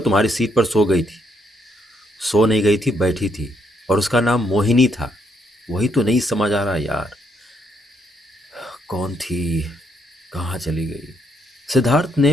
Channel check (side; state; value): both; normal; correlation 0.74